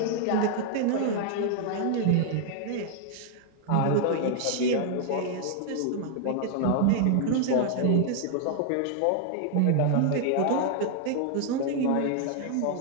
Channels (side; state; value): both; different; correlation 0.00